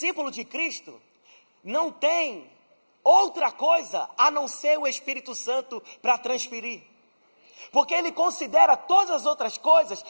de Cristo não tem outra coisa a não ser o Espírito Santo para transferir. Porque ele considera todas as outras coisas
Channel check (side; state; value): both; inverted; correlation -1.00